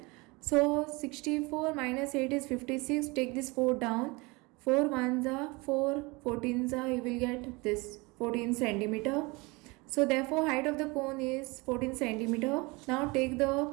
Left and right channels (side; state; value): left; quieter; 25.6 dB